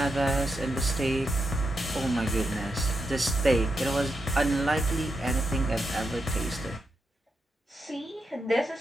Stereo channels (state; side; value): normal; both; correlation 0.85